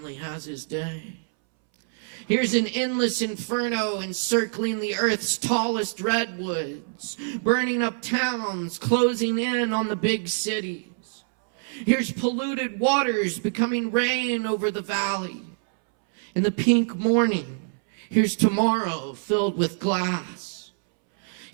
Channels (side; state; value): left; silent; 61 dB below the other